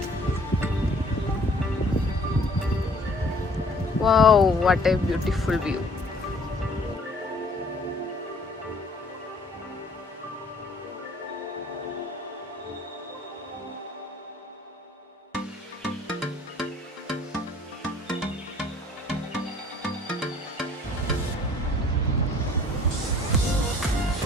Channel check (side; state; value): both; normal; correlation 0.56